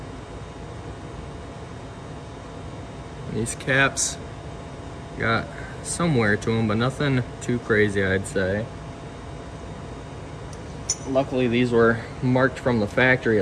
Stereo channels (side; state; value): both; identical; correlation 1.00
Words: These caps got some wear to them, but nothing too crazy, I'd say. Luckily these were marked from the factory,